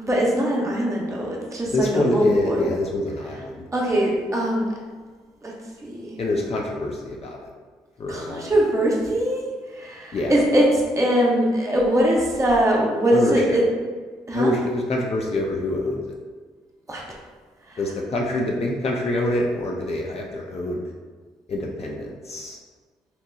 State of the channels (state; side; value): normal; both; correlation 0.75